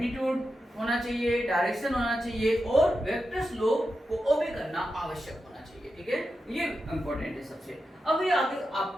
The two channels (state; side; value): normal; both; correlation 0.89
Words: होना चाहिए, डायरेक्शन होना चाहिए और वेक्टर्स लॉ को ओबे करना आवश्यक होना चाहिए, ठीक है? ये इंपॉर्टेंट है सबसे। अभी आगे आप